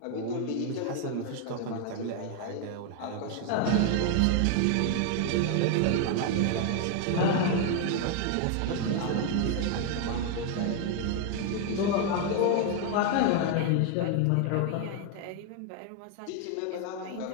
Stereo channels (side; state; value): both; different; correlation 0.01